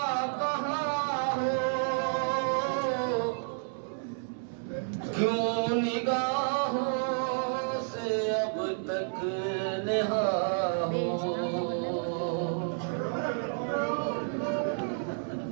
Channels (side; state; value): left; silent; 58 dB below the other